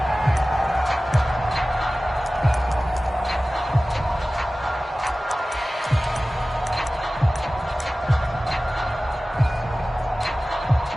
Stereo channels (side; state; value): both; normal; correlation 0.97